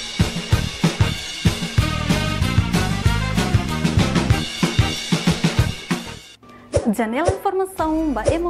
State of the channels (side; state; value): both; identical; correlation 1.00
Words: Janela informação ba